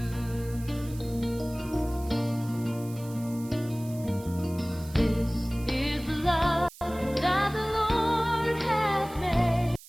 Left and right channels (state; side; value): noise; right; hiss, 19 dB below the sound